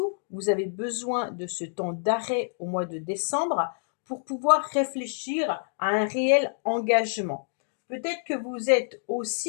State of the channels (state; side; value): silent; right; digital silence